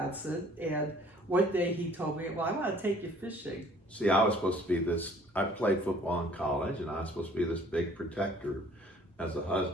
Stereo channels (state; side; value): normal; both; correlation 0.55